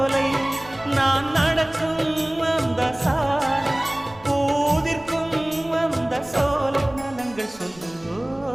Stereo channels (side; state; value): right; noise; rumble, 24 dB below the sound